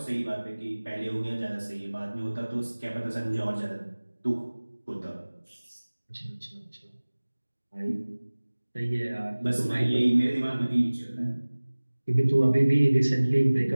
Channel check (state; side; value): inverted; both; correlation -1.00